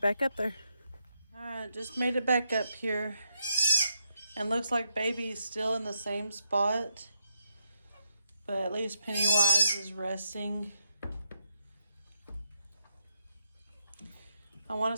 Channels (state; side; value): inverted; both; correlation -0.79